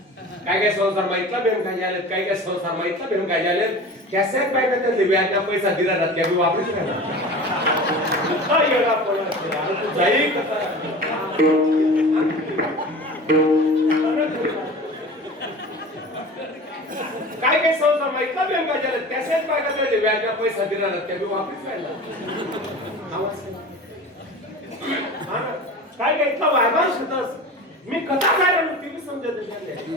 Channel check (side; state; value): both; normal; correlation 0.36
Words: काय काय संसार माहितला बेम काय झाले, काय काय संसार माहितला बेम काय झाले. कॅसे पाहिजे त्यांनी व्याजना पैसा दिला जात त्या वापरूच नाही काय येणार पण तू जाई कसा काय काय संसार माहितला बेम काय झाले. कॅसे पाहिजे त्यांनी व्याजना पैसा दिला जात त्या वापरूच नाही काय काय इतका वायबार होतास. मी कथा काय म्हणतो ती समजत नाही.